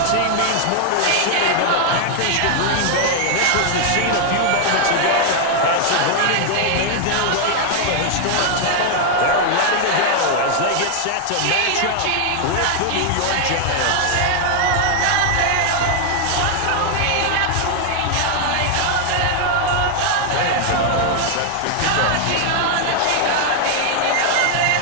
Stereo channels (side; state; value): both; different; correlation 0.00